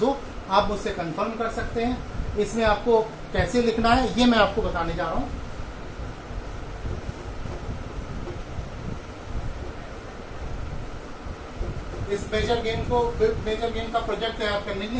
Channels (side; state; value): both; identical; correlation 1.00